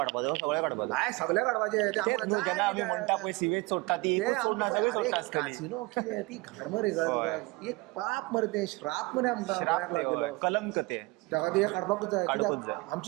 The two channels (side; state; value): left; quieter; 24.0 dB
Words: सगळे काडपाचो. काय सगळे काडपाचे ते आम्हाला तेच न्हू, जेन्ना आमी म्हणटा पळय सिवेज सोडटा ती एकूच सोडना सगळी सोडटा आसतली. कासिनो कितें ती घाण मरे. कळ्ळें तुका. एक पाप मरे ते श्राप मरे आमकां गोंयाक श्राप लागलेलो. ते, कलंक ते. त्या खातीर हें काडपाकूच जाय. काडपूच कित्याक जाय.